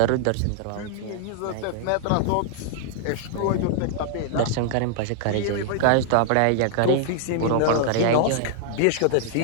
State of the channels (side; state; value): both; different; correlation -0.01